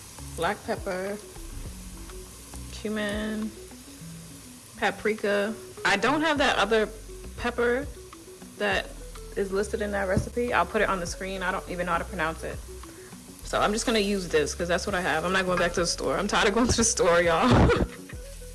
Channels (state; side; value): identical; both; correlation 1.00